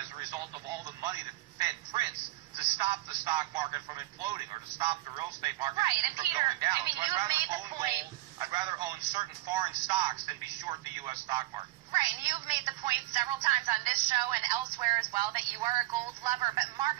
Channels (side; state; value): left; quieter; 18.7 dB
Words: a result of all the money that the Fed prints to stop the stock market from imploding or to stop the real estate market and from Peter, going down. I mean, so you have made the point. I'd rather own certain foreign stocks than be short the U.S. stock market. Right, and you've made the point several times on this show and elsewhere as well that you are a gold lover. But Mark,